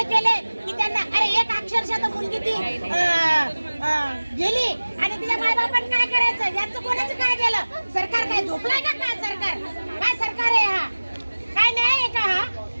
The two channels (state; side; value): inverted; both; correlation -1.00